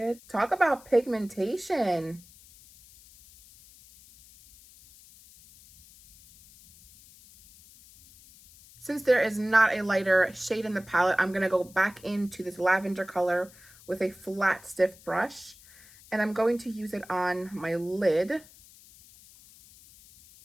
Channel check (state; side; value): noise; left; hiss, 24 dB below the sound